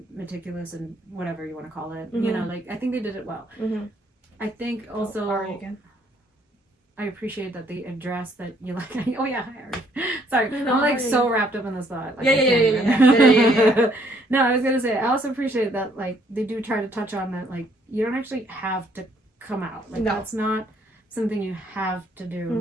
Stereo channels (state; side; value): normal; both; correlation 0.66